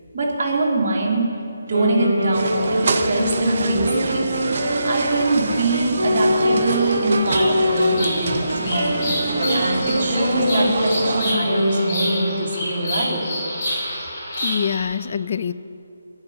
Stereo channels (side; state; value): both; inverted; correlation -0.80